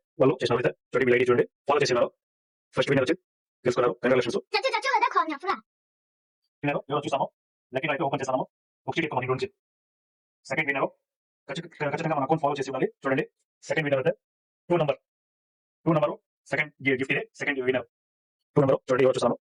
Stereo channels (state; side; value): identical; both; correlation 1.00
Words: వాళ్ళు చేసినారు. అయితే చూడండి, మీ ఐడి చూడండి, ఫాలో చేసినారు. ఫస్ట్ విన్నర్ వచ్చి తెలుసుకున్నారు. కంగ్రాచులేషన్స్. విన్నర్ ఎవరు చూస్తాము. లక్కీ అయితే ఓపెన్ చేస్తాము. ఒకటి ఎక్కువ మనకి గురించి. సెకండ్ విన్నర్ ఖచ్చితంగా మన అకౌంట్ ఫాలో చేసి ఉండాలి. చూడండి, సెకండ్ విన్నర్ అయితే 2 నెంబర్ సెకండ్ గిఫ్ట్ ఇదే. సెకండ్ విన్నర్ 2 నెంబర్ చూడండి, ఎవరు చూస్తాము.